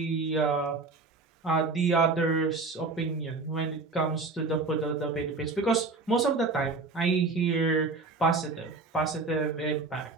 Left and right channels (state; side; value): quieter; left; 3.8 dB